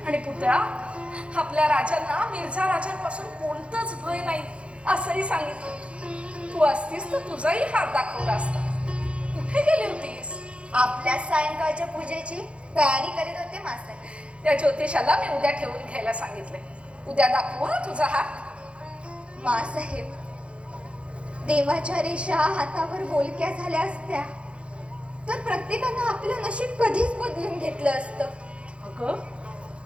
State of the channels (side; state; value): left; late; 0.059 ms